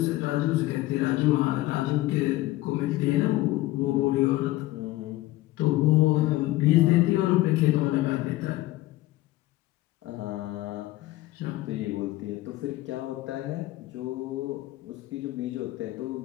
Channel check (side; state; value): right; quieter; 17.2 dB